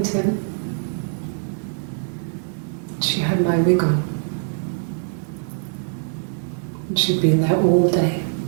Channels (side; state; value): left; silent; 62 dB below the other